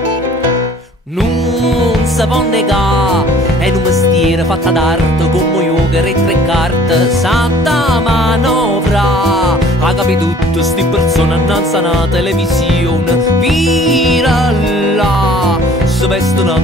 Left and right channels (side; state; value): both; normal; correlation 0.53